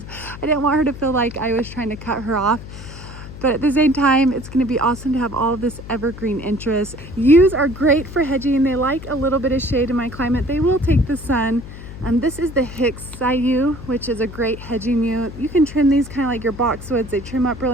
I didn't want her to feel like I was trying to cut her off. But at the same time, it's gonna be awesome to have all of this evergreen interest. Yews are great for hedging. They like a little bit of shade in my climate. They will take the sun. This is the Hicksii yew, which is a great hedging yew. You can trim these kind of like your boxwoods. They trim up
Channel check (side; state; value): left; noise; hum, 13 dB below the sound